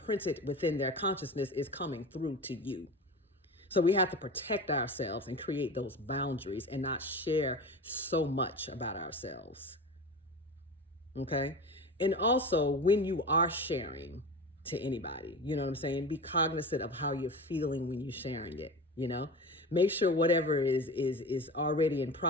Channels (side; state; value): both; normal; correlation 0.30